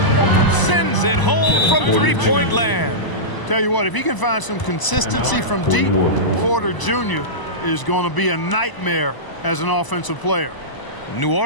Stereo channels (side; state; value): right; late; 1.0 ms